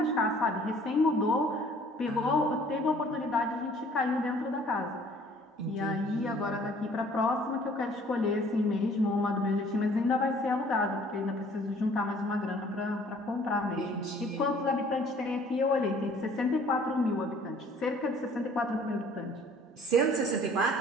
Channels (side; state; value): both; normal; correlation 0.55